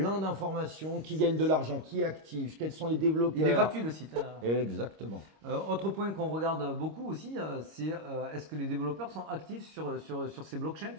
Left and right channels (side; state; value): left; late; 26 ms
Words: d'informations. Qui gagne de l'argent, qui est actif, quels sont les développeurs. Il est gratuit le site. Exactement. Autre point qu'on regarde beaucoup aussi, c'est est-ce que les développeurs sont actifs sur ces blockchains,